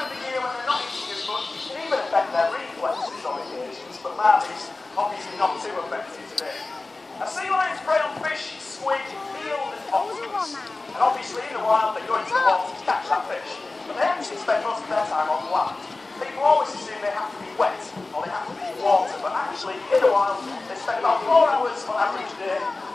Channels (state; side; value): quieter; right; 3.3 dB